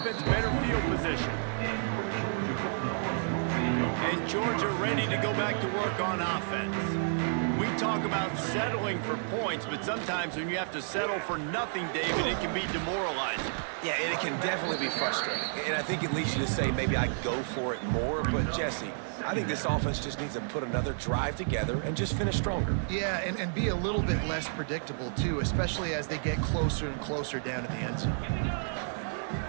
better field position. And Georgia ready to go back to work on offense. We talk about settling for points, but sometimes when you have to settle for nothing, David, it can be demoralizing. Yeah, and it can definitely be frustrating. And I think it leads you to say maybe I go for it more. But, Jesse, I think this offense just needs to put another drive together and just finish stronger. Yeah, and be a little bit less predictable, too, especially as they get closer and closer down to the end zone.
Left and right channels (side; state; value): left; silent; digital silence